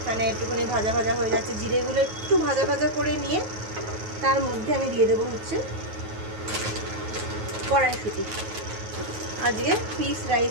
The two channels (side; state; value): left; late; 9.4 ms